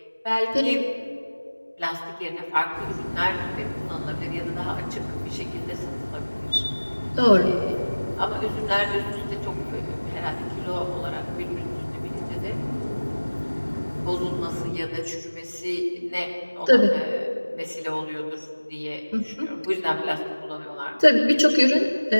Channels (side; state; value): both; inverted; correlation -1.00